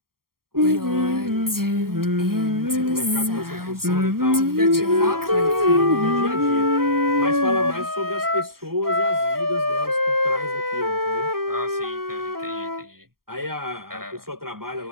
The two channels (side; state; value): left; late; 0.93 ms